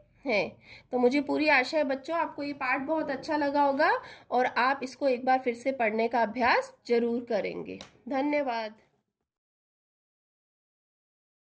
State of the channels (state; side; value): identical; both; correlation 1.00